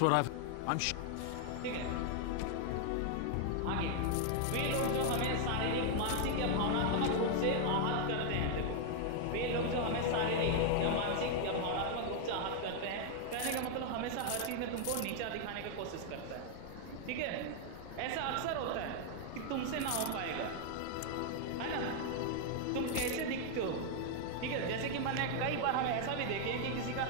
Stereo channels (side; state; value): both; different; correlation 0.00